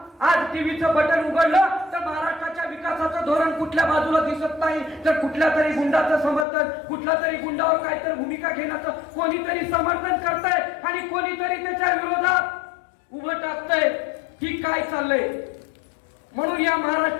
आज टीव्हीचं बटन उघडलं तर महाराष्ट्राच्या विकासाचं धोरण कुठल्या बाजूला दिसत नाही, तर कुठल्या तरी गुंडाचं समर्थन, कुठल्या तरी गुंडावर काहीतरी भूमिका घेण्याचं कोणीतरी समर्थन करतंय आणि कोणीतरी त्याच्या विरोधात उभं टाकतंय. की काय चाललंय? म्हणून या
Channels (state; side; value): drops out; right; at 6.5 s